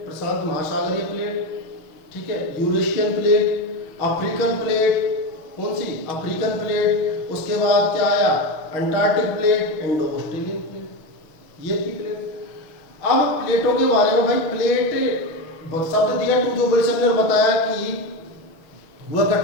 प्रशांत महासागरीय प्लेट, ठीक है, यूरेशियन प्लेट, अफ्रीकन प्लेट, कौन सी अफ्रीकन प्लेट, उसके बाद क्या आया Antarctic plate, Indo Australian plate, ये थी प्लेट। अब प्लेटों के बारे में भाई प्लेट शब्द दिया टूजो विल्सन ने, बताया कि वह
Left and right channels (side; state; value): right; late; 6.4 ms